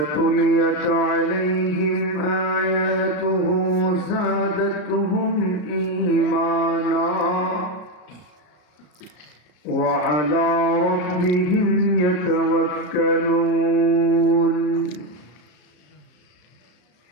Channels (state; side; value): late; right; 33 ms